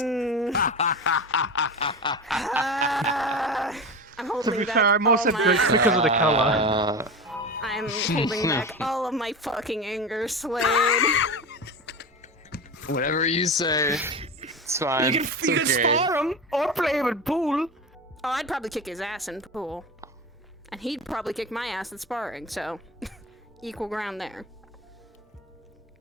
I'm To holding be back fair, I'm also all my... good because of the color. I'm holding back all of my fucking anger, Slade. Whatever you say. It's fine. You It's can okay. spar him or play him in pool. Oh, I'd probably kick his ass in pool. And he'd probably kick my ass at sparring, so... equal ground there.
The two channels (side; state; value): both; normal; correlation 0.26